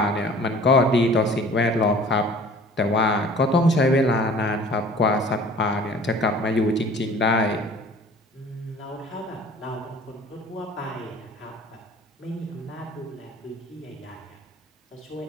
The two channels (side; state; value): both; normal; correlation 0.48